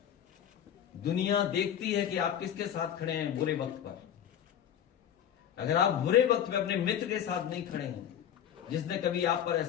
दुनिया देखती है कि आप किसके साथ खड़े हैं बुरे वक्त पर। अगर आप बुरे वक्त में अपने मित्र के साथ नहीं खड़े हैं जिसने कभी आप पर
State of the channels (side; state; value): right; quieter; 9.7 dB